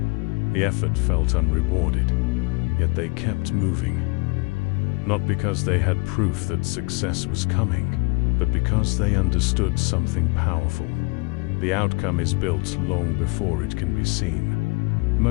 The effort felt unrewarded, yet they kept moving. Not because they had proof that success was coming, but because they understood something powerful. The outcome is built long before it can be seen.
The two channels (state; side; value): quieter; right; 29.4 dB